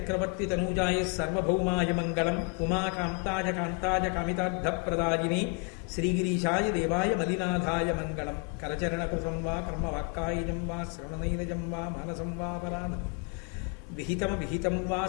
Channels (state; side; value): quieter; right; 32.7 dB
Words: తనూజాయ సర్వభౌమాయ మంగళం. ఉమాకాంతాయ కాంతాయ కామితార్థప్రదాయినే శ్రీగిరీశాయ దేవాయ మలినాథాయ మంగళం. కరచరణకుశం వా కర్మవాక్కాయజం వా శ్రవణనైనజం వా మానసం వా పరాణం విహితం వా